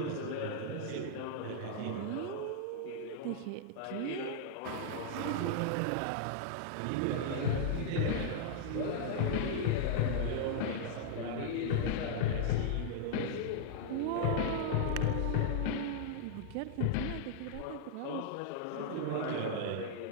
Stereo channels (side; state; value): both; different; correlation -0.01